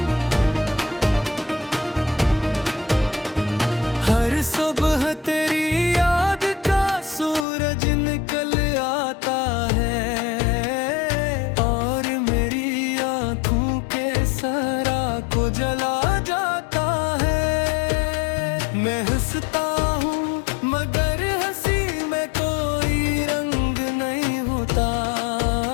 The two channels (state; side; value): drops out; right; at 7.5 s